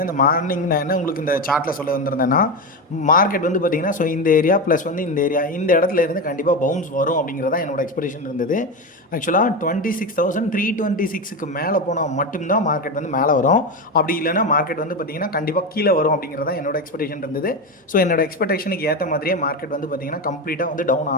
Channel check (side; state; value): both; normal; correlation 0.17